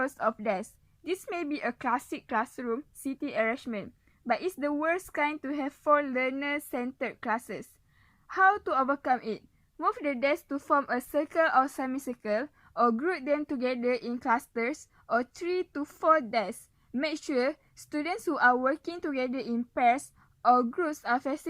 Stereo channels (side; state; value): both; identical; correlation 1.00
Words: of desks. This may be a classic classroom seating arrangement, but it's the worst kind to have 4 learner-centered classes. How to overcome it? Move the desks to form a circle or semicircle, or group them together in clusters or 3 to 4 desks. Make sure students who are working together in pairs or groups are